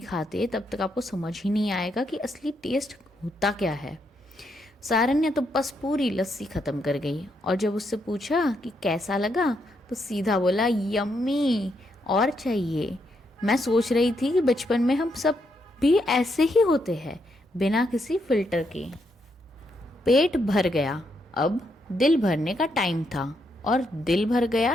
खाते तब तक आपको समझ ही नहीं आएगा कि असली टेस्ट होता क्या है। सारन ने तो बस पूरी लस्सी खत्म कर गई और जब उससे पूछा कि कैसा लगा तो सीधा बोला यम्मी, और चाहिए। मैं सोच रही थी कि बचपन में हम सब भी ऐसे ही होते हैं, बिना किसी फिल्टर के। पेट भर गया, अब दिल भरने का टाइम था। और दिल भर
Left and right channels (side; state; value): both; normal; correlation 0.78